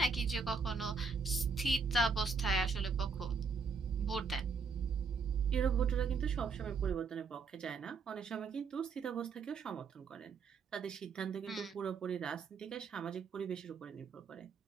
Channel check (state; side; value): quieter; left; 5.0 dB